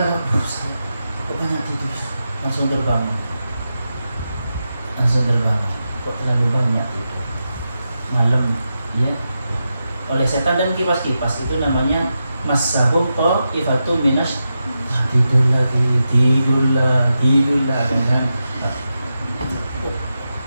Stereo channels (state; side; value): inverted; both; correlation -0.89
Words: kok banyak tidur, langsung terbangun, kok terlalu banyak tidur malam, ya. Oleh setan dan kipas-kipas itu namanya masahum ta'ifatun minas. Tidur lagi kan.